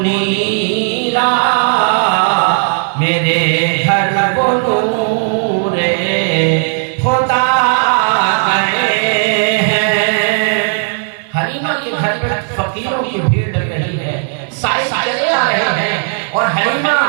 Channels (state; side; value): silent; left; 55 dB below the other